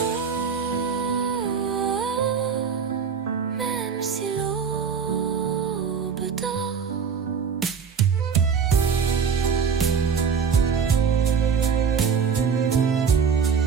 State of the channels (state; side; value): quieter; left; 6.4 dB